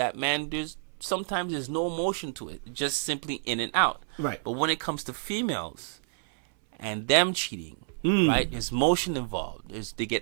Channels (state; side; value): silent; left; 59 dB below the other